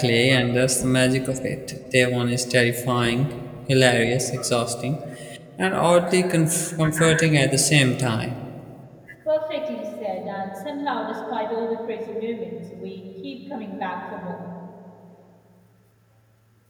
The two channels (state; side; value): identical; both; correlation 1.00